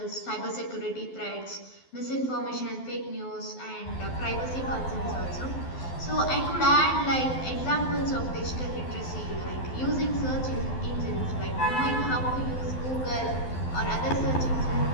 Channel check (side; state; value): right; late; 12 ms